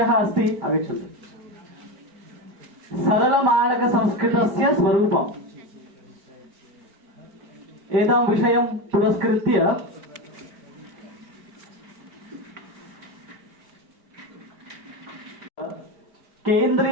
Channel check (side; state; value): left; late; 5.1 ms